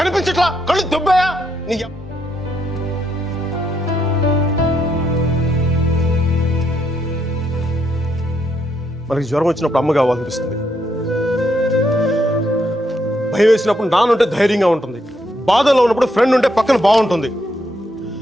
కళ్ళు దుబ్బాయా నీ మనకి జ్వరం వచ్చినప్పుడు అమ్మ కావాలనిపిస్తుంది, భయం వేసినప్పుడు నాన్నుంటే ధైర్యంగా ఉంటుంది, బాధలో ఉన్నప్పుడు ఫ్రెండ్ ఉంటే పక్కన బాగుంటుంది,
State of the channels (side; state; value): both; normal; correlation 0.77